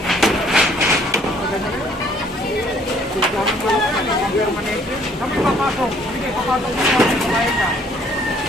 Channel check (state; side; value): normal; both; correlation 0.61